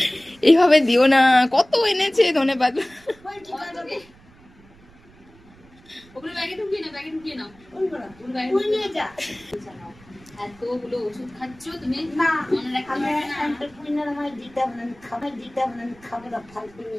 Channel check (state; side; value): noise; right; rumble, 26 dB below the sound